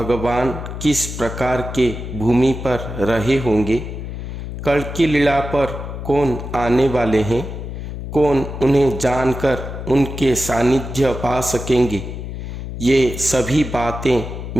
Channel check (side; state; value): left; noise; hum, 8 dB below the sound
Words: किस प्रकार के भूमि पर रहे होंगे, कल्कि लीला पर कौन आने वाले हैं, कौन उन्हें जानकर उनके सानिध्य पा सकेंगे, ये सभी बातें